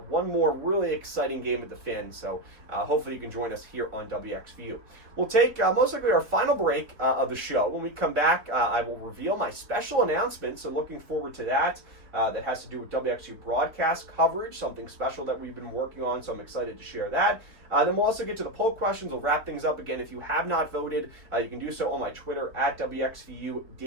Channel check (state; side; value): late; left; 3.7 ms